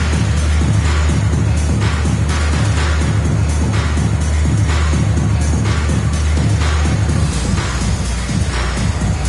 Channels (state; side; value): identical; both; correlation 1.00